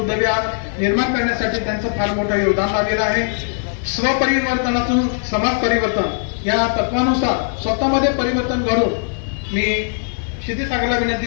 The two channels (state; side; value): silent; right; 57 dB below the other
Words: निर्माण करण्यासाठी त्यांचं फार मोठं योगदान लाभलेलं आहे. स्वपरिवर्तनातून समाज परिवर्तन या तत्वानुसार स्वतःमध्ये परिवर्तन घडून मी क्षितिसागरला विनंती